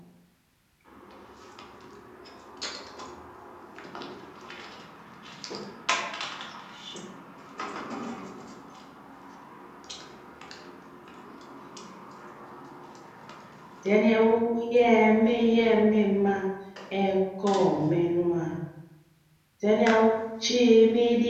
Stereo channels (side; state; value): both; identical; correlation 1.00